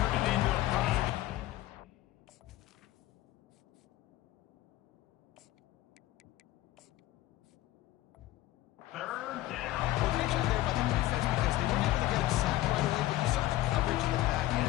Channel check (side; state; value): right; quieter; 15.8 dB